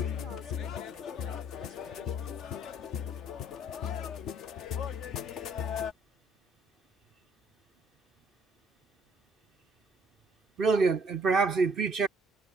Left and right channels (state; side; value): normal; both; correlation 0.62